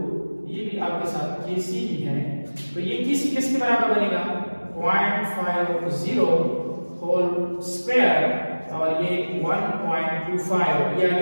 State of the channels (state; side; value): inverted; both; correlation -1.00